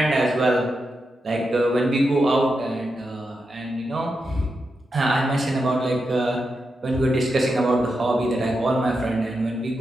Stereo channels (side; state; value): both; normal; correlation 0.87